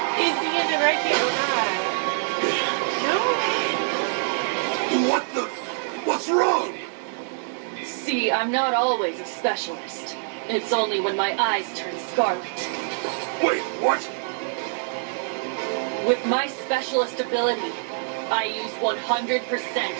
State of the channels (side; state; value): left; silent; digital silence